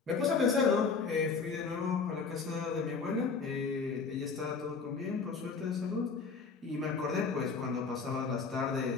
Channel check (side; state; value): right; quieter; 5.0 dB